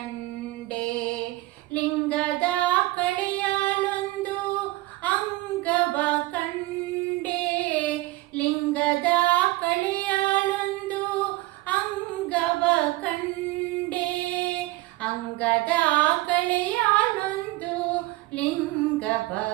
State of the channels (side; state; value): left; quieter; 19.7 dB